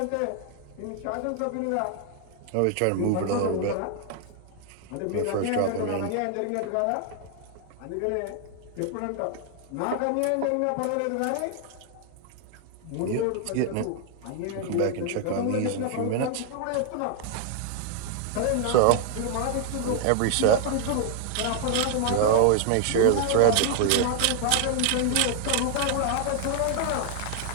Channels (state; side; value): different; both; correlation 0.00